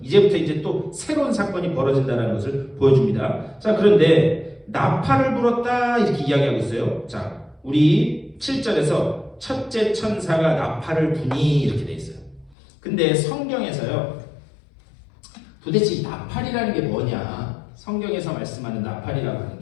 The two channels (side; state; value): right; drops out; at 12.6 s